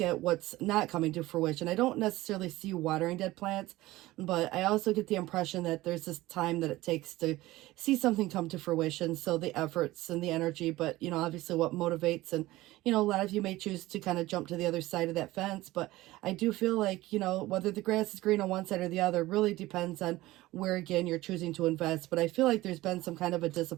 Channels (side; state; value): left; quieter; 17.9 dB